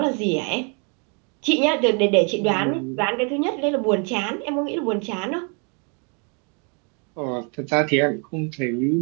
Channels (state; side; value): quieter; left; 36.5 dB